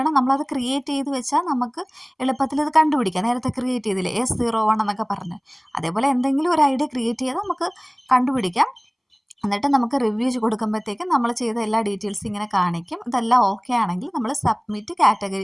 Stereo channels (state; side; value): identical; both; correlation 1.00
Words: നമ്മളത് ക്രിയേറ്റ് ചെയ്ത് വെച്ചാൽ നമുക്ക് എളുപ്പത്തിൽ ഇത് കണ്ടുപിടിക്കാം. നേരത്തെ ക്രിയേറ്റ് ചെയ്തില്ലേ S01 എന്നൊക്കെ പറഞ്ഞ്, അതേപോലെ എന്തെങ്കിലും ഒരു ID ക്രിയേറ്റ് ചെയ്താൽ നമുക്ക് കണ്ടുപിടിക്കാം. എന്നിട്ട് നമുക്ക് റിവ്യൂ കൊടുക്കുമ്പോഴത്തേക്കും നമ്മൾ ചെയ്ത എല്ലാ ഡീറ്റെയിൽസും ഇങ്ങനെ കാണിക്കും. ഇതെല്ലാം ഓക്കെ ആണെങ്കിൽ നമ്മൾ സബ്മിറ്റ്